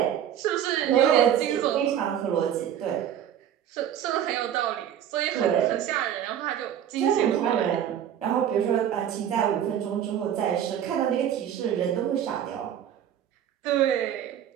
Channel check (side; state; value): left; quieter; 10.0 dB